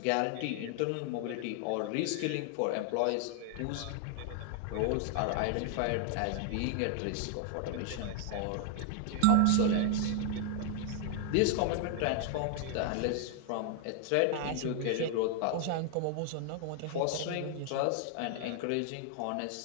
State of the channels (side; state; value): both; different; correlation 0.00